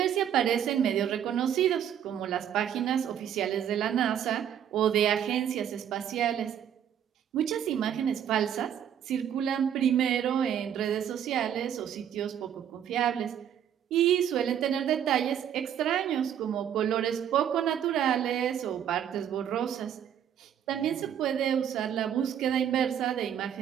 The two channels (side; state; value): left; quieter; 9.5 dB